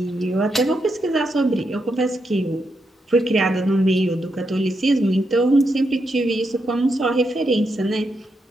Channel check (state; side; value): normal; both; correlation 0.83